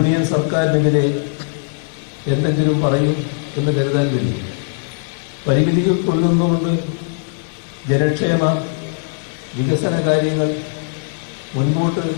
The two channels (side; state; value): right; silent; digital silence